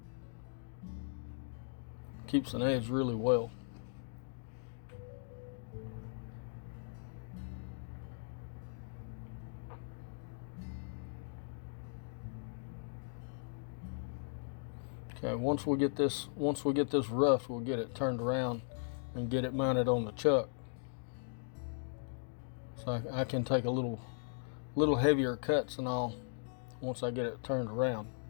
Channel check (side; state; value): right; silent; digital silence